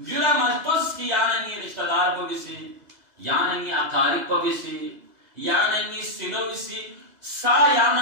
मस्तुस की यानी रिश्तेदार को बिसी यानी अकारिब को बिसी यानी सिलो बिसी सा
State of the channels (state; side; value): late; left; 2.0 ms